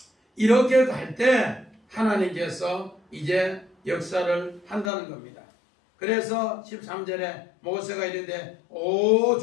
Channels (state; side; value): drops out; right; at 4.9 s